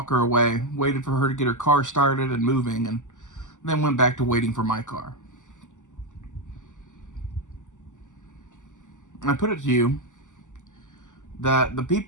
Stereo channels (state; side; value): late; right; 0.86 ms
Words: away, waited for her to get her car started and moving, and then went back to waiting for my car. And I put it to you that the